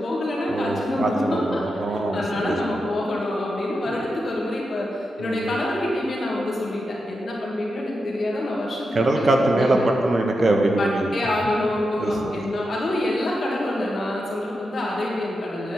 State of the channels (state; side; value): normal; both; correlation 0.88